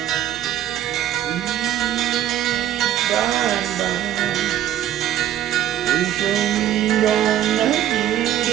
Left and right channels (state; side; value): quieter; left; 11.7 dB